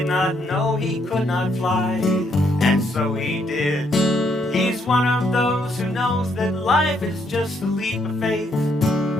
not know he could not fly, and so he did. He's one of those who knows that life is just a leap of faith.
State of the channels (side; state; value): both; normal; correlation 0.73